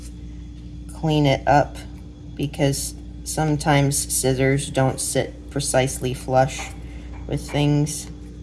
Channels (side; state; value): both; identical; correlation 1.00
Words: clean it up, because sometimes scissors don't sit precisely flush with things.